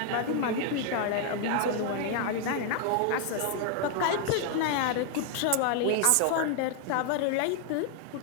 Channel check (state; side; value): different; both; correlation 0.00